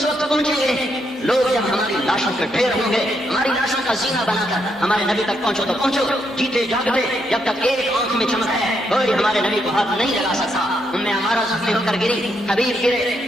وقت پہنچیں گے لوگ جب ہماری لاشوں کے ڈھیر ہوں گے ہماری لاشوں کا زینہ بنا کر ہمارے نبی تک پہنچو تو پہنچو جیتے جاگتے جب تک ایک آنکھ میں چمک ہے کوئی ہمارے نبی کو ہاتھ نہیں لگا سکتا ہمیں ہمارا زخمی ہو کر گری حبیب گرے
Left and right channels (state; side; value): normal; both; correlation 0.78